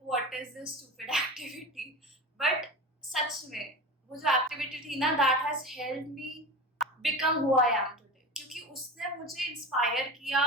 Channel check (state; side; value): normal; both; correlation 0.30